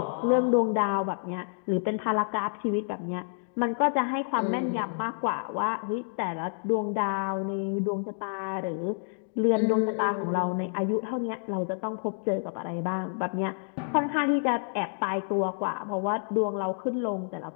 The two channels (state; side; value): silent; right; digital silence